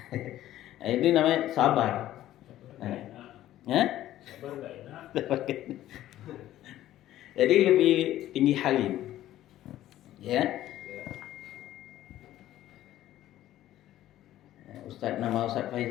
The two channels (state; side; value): quieter; right; 13.6 dB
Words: Nah, itu namanya sabar. Ya? Sabar nggak enak. Jadi lebih tinggi halim. Ya. Ustaz, nama Ustaz